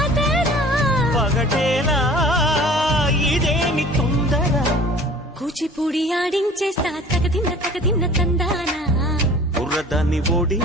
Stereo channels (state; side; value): normal; both; correlation 0.46